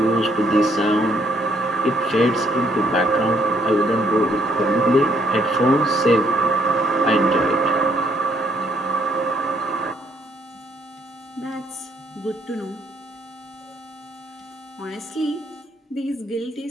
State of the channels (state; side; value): normal; both; correlation 0.68